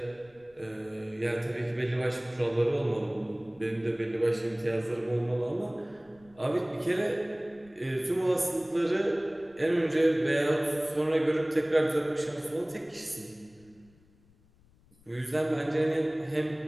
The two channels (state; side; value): noise; left; rumble, 30 dB below the sound